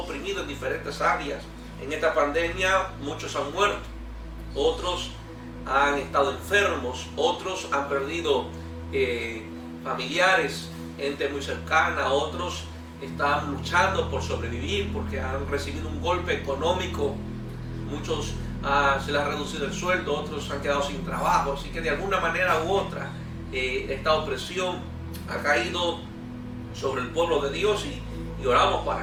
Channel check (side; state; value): both; identical; correlation 1.00